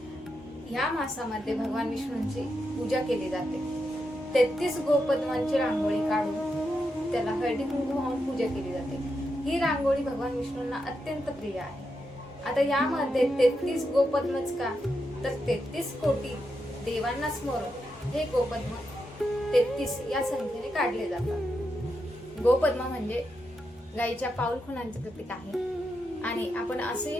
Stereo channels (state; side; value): normal; both; correlation 0.85